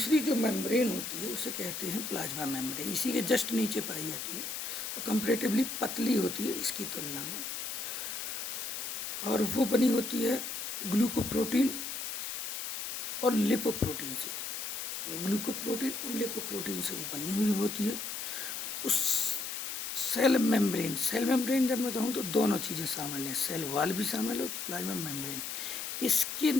जो मेम्ब्रेन होती है उसे कहते हैं प्लाज्मा मेम्ब्रेन। इसी के जस्ट नीचे पाई जाती है और कंपैरेटिवली पतली होती है इसकी तुलना में। और वो बनी होती है ग्लूकोप्रोटीन और लिपोप्रोटीन से। ग्लूकोप्रोटीन और लिपोप्रोटीन से वो बनी हुई होती है। उस सेल मेम्ब्रेन जब मैं कहूँ तो दोनों चीज़ें शामिल हैं, सेल वॉल भी शामिल है, प्लाज्मा मेम्ब्रेन। इसके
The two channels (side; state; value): left; noise; hiss, 5 dB below the sound